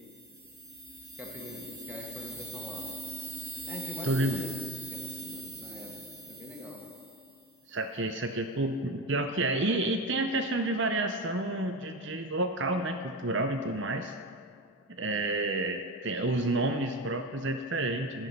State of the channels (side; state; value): both; normal; correlation 0.23